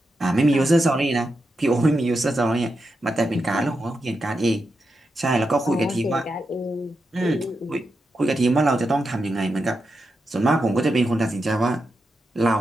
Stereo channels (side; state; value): both; normal; correlation 0.87